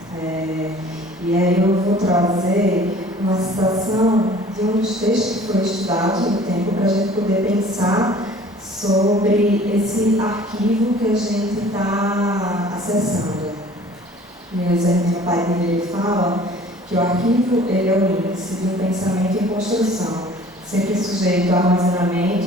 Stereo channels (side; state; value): both; normal; correlation 0.49